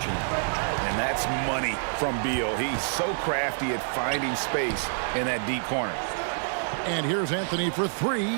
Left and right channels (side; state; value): left; silent; 60 dB below the other